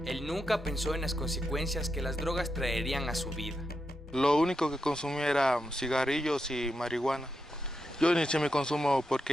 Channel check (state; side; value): normal; both; correlation 0.86